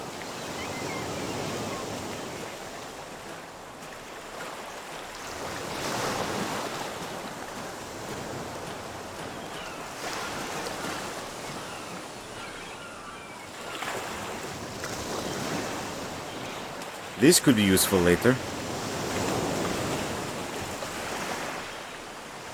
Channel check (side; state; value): both; identical; correlation 1.00